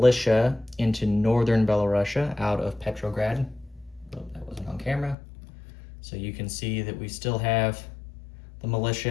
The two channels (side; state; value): right; drops out; at 5.2 s